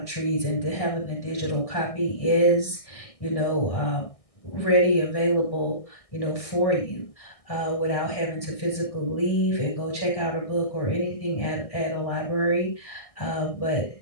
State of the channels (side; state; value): right; late; 1.6 ms